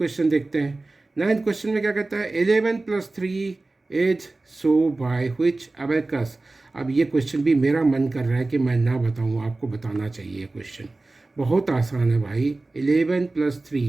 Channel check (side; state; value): left; quieter; 3.2 dB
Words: देखते हैं। 9th क्वेश्चन में क्या कहता है, 11 + 3 is so by which abacus. अब ये क्वेश्चन भी मेरा मन कर रहा है कि मैं ना बताऊँ, आपको बताना चाहिए। ये क्वेश्चन बहुत आसान है भाई। 11 +